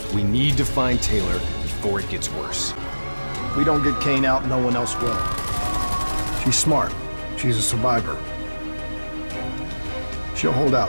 We need to find Taylor before it gets worse. If we don't get Kane out, no one else will. She's smart. She's a survivor. She'll hold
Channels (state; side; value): inverted; both; correlation -1.00